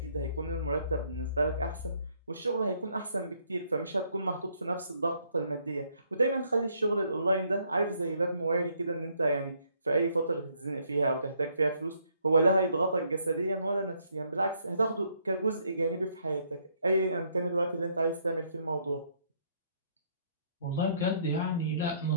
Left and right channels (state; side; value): inverted; both; correlation -0.69